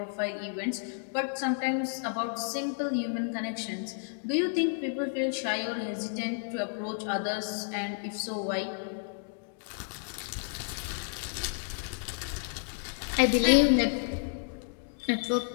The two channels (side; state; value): right; silent; digital silence